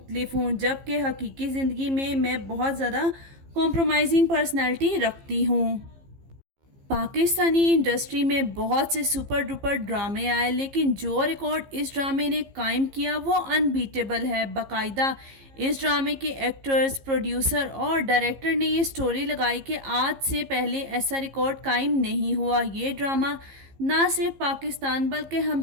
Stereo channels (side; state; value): left; late; 15 ms